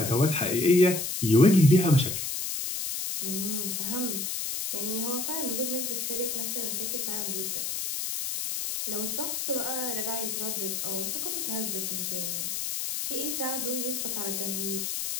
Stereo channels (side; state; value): left; noise; hiss, 2 dB below the sound